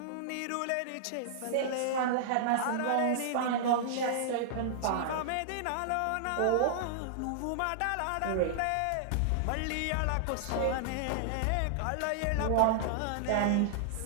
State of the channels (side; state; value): both; different; correlation -0.01